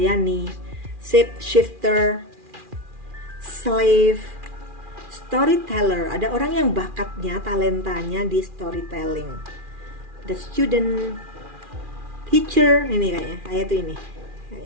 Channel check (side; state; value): left; late; 2.4 ms